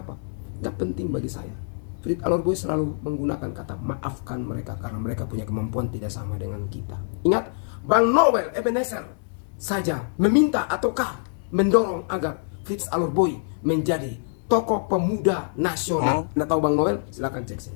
Nggak penting bagi saya. Fit Alot Boy selalu menggunakan kata maafkan mereka karena mereka punya kemampuan tidak sama dengan kita. Ingat, Bang Noel Ebenezer saja meminta ataukah mendorong agar Fit Alot Boy menjadi tokoh pemuda nasional. Anda tahu Bang Noel? Silakan cek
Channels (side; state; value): right; silent; 62 dB below the other